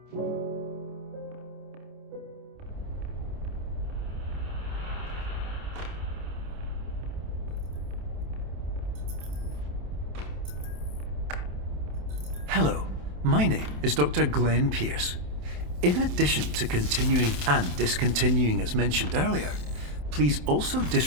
Hello, my name is Dr. Glenn Pierce. In addition to continuing and discontinuing as mentioned earlier, please also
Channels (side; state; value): left; late; 27 ms